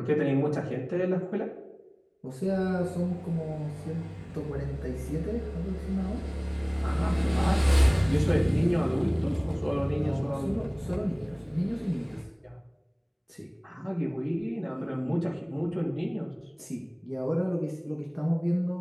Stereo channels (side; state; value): both; identical; correlation 1.00